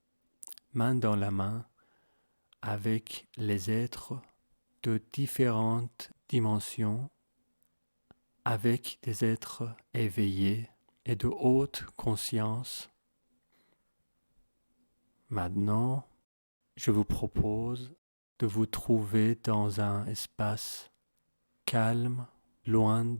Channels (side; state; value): both; inverted; correlation -1.00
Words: main dans la main avec les êtres de différentes dimensions, avec des êtres éveillés et de haute conscience. Maintenant, je vous propose de vous trouver dans un espace calme, loin